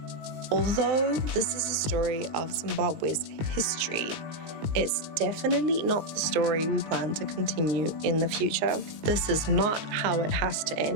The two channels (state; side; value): late; left; 19 ms